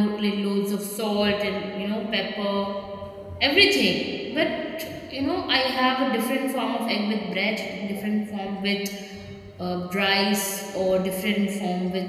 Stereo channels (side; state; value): both; identical; correlation 1.00